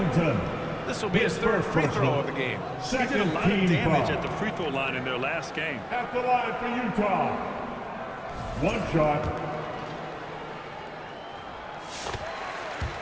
This will be his 3rd free throw of the game. He did a lot of damage at the free throw line in their last game. At the line for Utah. 1 shot.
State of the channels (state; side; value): identical; both; correlation 1.00